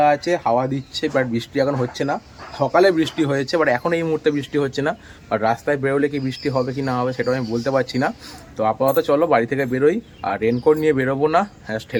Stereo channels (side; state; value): both; identical; correlation 1.00